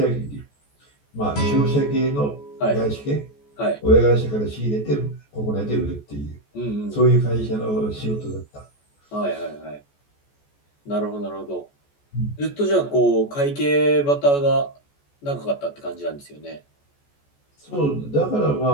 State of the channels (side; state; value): right; late; 14 ms